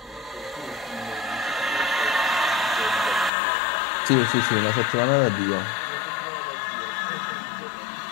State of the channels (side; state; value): right; drops out; at 3.3 s